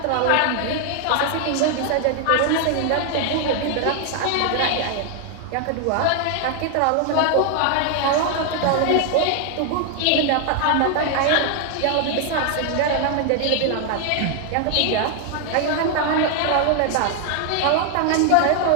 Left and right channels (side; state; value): both; different; correlation 0.00